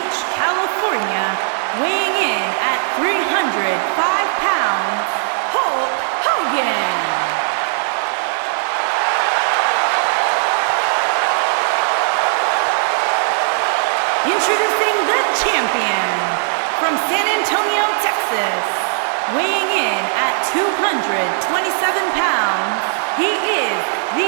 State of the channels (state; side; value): silent; left; digital silence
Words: California, weighing in at 305 pounds, Hulk Hogan. Introducing the champion from San Antonio, Texas, weighing in at 227 pounds, he is